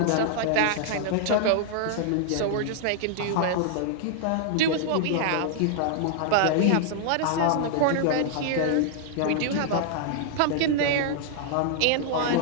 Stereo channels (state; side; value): different; both; correlation 0.00